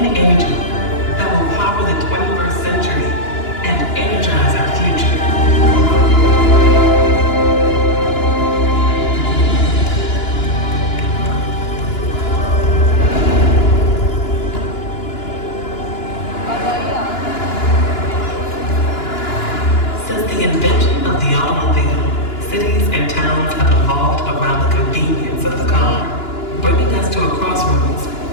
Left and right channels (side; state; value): right; late; 2.9 ms